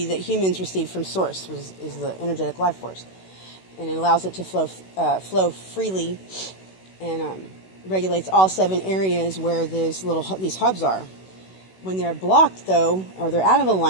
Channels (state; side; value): late; right; 16 ms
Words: that humans receive from source, is the energetic life force. And it allows it to flow freely and regulates all 7 areas where these hubs are. When they're blocked, though, or they're out of